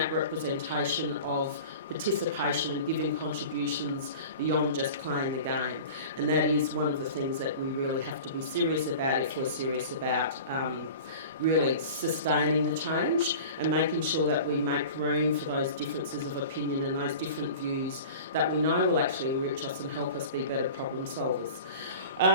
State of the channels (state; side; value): inverted; both; correlation -0.38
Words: representation of participation and giving contributions beyond just playing the game. And that is one of the things that we really have to be serious about if we're serious about really sustaining the change and making sure that we make room for those differences of opinion and those different views that we know will actually enrich us and help us be better problem solvers.